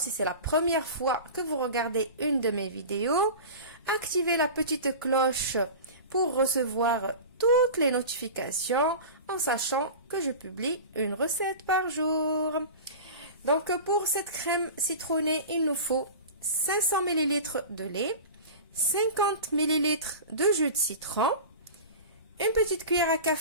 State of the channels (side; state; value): both; inverted; correlation -0.33